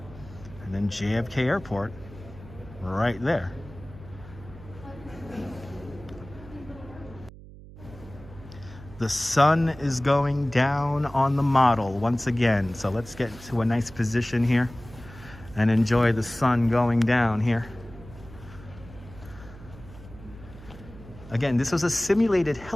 And then JFK Airport right there. The sun is going down on the model once again. So let's get to a nice position here and enjoy the sun going down here. Again, this was a simulated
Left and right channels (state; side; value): noise; right; hum, 18 dB below the sound